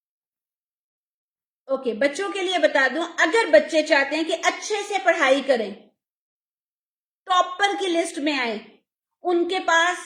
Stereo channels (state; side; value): identical; both; correlation 1.00